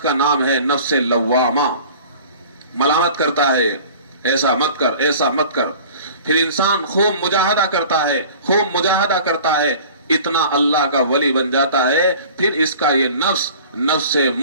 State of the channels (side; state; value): both; inverted; correlation -0.44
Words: نام ہے نفس لوامہ. ملامت کرتا ہے، ایسا مت کر، ایسا مت کر. پھر انسان خوب مجاہدہ کرتا ہے، خوب مجاہدہ کرتا ہے، اتنا اللہ کا ولی بن جاتا ہے، پھر اس کا یہ نفس نفس